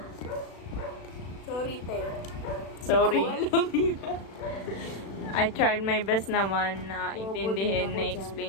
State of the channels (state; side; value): late; right; 36 ms